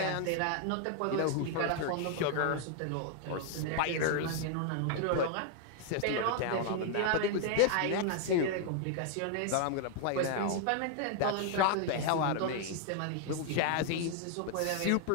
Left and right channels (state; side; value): different; both; correlation 0.00